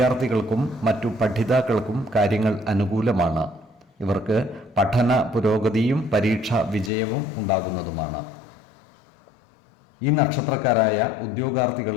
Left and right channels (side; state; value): right; drops out; at 6.9 s